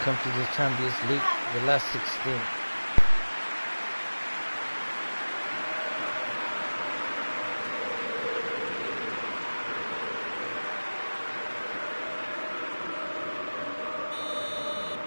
to the Champions League, the last 16.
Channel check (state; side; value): inverted; both; correlation -1.00